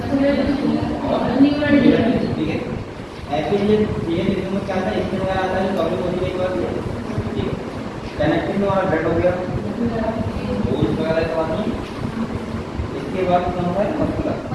ठीक है? एपिथेलियम ये टिश्यू में क्या आता है? इसमें वगैरह आता है जो कभी होती है, ठीक है? कनेक्टिव में हमारा ब्लड हो गया, बोन्स वगैरह सब आती है। इसके बाद क्या होता है?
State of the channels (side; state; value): both; identical; correlation 1.00